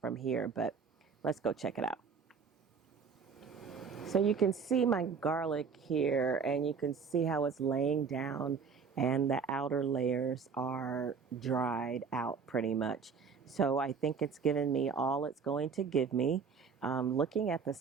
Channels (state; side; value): quieter; left; 5.7 dB